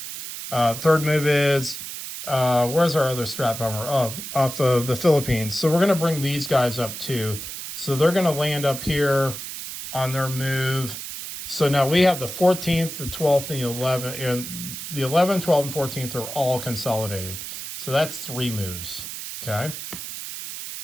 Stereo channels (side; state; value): right; noise; hiss, 8 dB below the sound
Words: Third move is, where's our other strap bomber? Oh, off of the Philippines. So we're going to bring these guys up too. So they're going to land up here on their move. So now we have the 14th, the 12th, and the 11th. And the 11th, 12th, and 14th are all consolidated. So that's 3 moves. Okay.